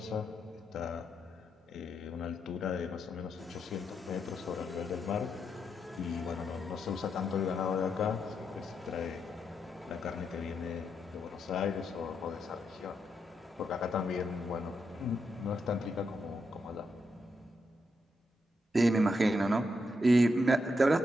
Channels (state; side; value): normal; both; correlation 0.82